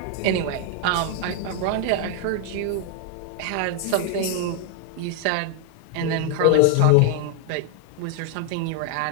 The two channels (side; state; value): both; different; correlation 0.00